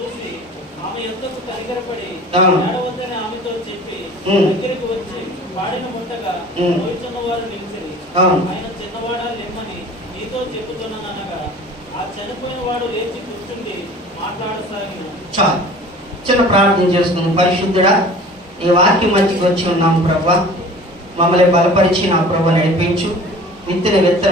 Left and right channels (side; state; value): both; normal; correlation 0.44